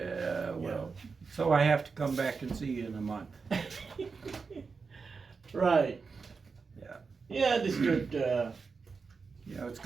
Well. So I have to come back and see you in a month. Right. Yeah. Yeah, this good. Yeah. It's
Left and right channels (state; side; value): quieter; left; 4.9 dB